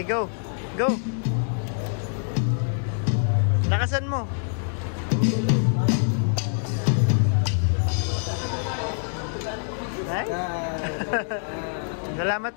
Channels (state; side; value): silent; right; digital silence